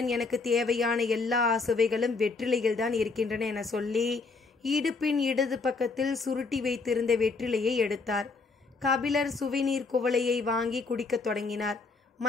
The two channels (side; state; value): right; quieter; 4.1 dB